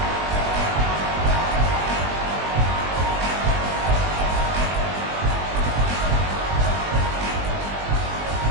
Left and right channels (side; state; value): left; late; 20 ms